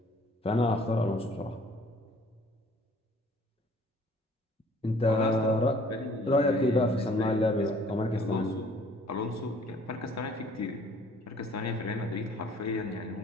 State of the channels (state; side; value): normal; both; correlation 0.56